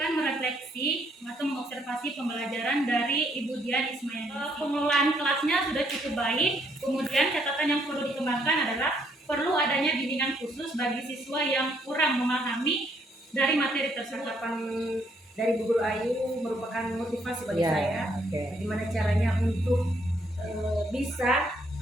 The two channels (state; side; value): normal; both; correlation 0.70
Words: merefleksi atau mengobservasi pembelajaran dari Ibu Dian Ismail. Pengelolaan kelasnya sudah cukup baik. Kemudian catatan yang perlu dikembangkan adalah perlu adanya bimbingan khusus bagi siswa yang kurang memahami dari materi tersebut. Dari Bu Guru Ayu merupakan motivasi bagi saya. Bagaimana caranya untuk bisa